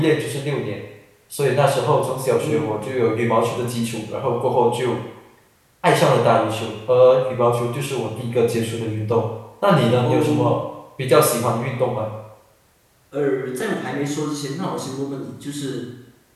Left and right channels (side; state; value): both; identical; correlation 1.00